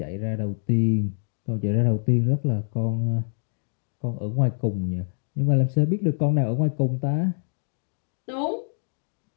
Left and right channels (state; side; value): silent; right; digital silence